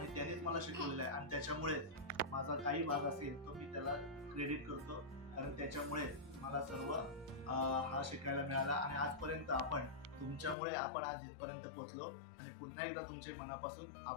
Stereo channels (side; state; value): right; drops out; at 10.6 s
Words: त्यानेच मला शिकवलेलं आहे. आणि त्याच्यामुळे माझा काही भाग असेल तो मी त्याला क्रेडिट करतो, कारण त्याच्यामुळे मला सर्व हा शिकायला मिळाला आणि आजपर्यंत तुमच्यामुळे आपण आज इथपर्यंत पोहोचलो आणि पुन्हा एकदा तुमचे मनापासून